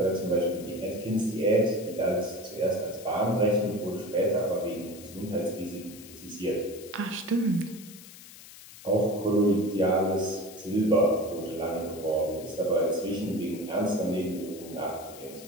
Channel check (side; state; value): left; noise; hiss, 18 dB below the sound